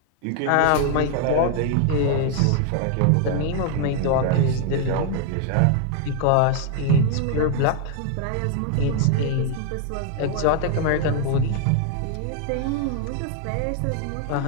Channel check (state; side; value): different; both; correlation 0.00